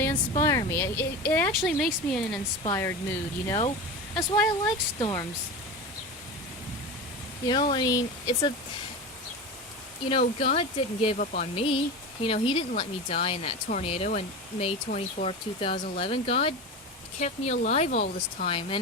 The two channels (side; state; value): both; normal; correlation 0.26